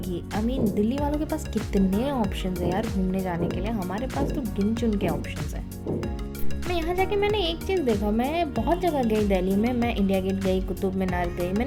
दिल्ली वालों के पास कितने ऑप्शंस है यार घूमने जाने के लिए, हमारे पास तो गिन चुन के ऑप्शंस है। मैं यहाँ जाके मैंने एक चीज़ देखा, मैं बहुत जगह गई दिल्ली में, मैं इंडिया गेट गई, कुतुब मीनार गई,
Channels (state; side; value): identical; both; correlation 1.00